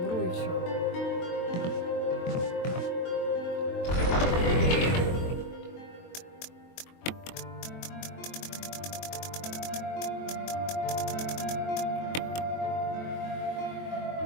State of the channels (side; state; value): right; late; 23 ms